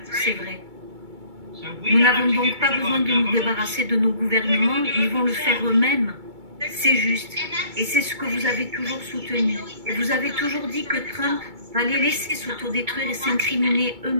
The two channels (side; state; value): left; late; 2.2 ms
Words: C'est vrai. Nous n'avons donc pas besoin de nous débarrasser de nos gouvernements, ils vont le faire eux-mêmes. C'est juste. Et c'est ce que vous avez toujours soutenu. Et vous avez toujours dit que Trump va les laisser s'autodétruire et s'incriminer